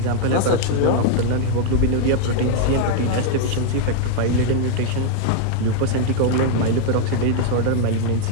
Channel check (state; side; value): different; both; correlation 0.00